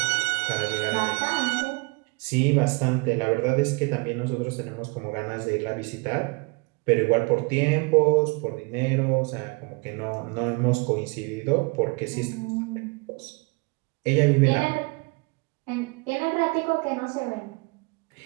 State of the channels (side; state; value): left; quieter; 29.4 dB